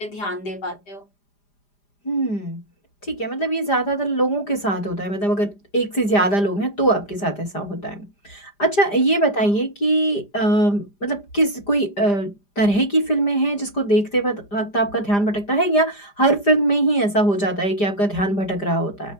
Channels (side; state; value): right; late; 5.0 ms